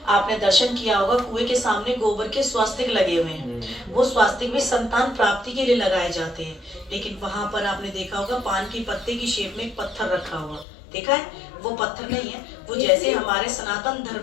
आपने दर्शन किया होगा, कुएं के सामने गोबर के स्वास्तिक लगे हुए हैं। वो स्वास्तिक भी संतान प्राप्ति के लिए लगाए जाते हैं। लेकिन वहां पर आपने देखा होगा पान की पत्ते की शेप में एक पत्थर रखा हुआ, देखा है? वो पत्थर नहीं है, वो जैसे हमारे सनातन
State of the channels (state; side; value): drops out; right; at 10.7 s